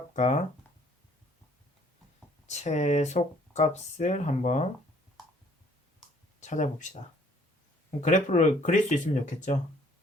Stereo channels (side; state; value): both; normal; correlation 0.60